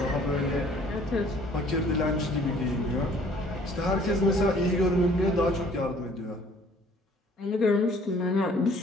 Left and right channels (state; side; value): normal; both; correlation 0.56